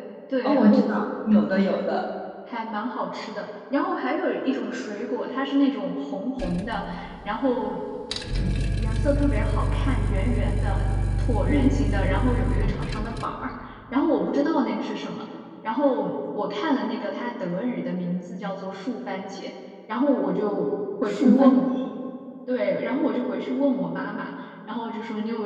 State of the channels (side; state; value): both; identical; correlation 1.00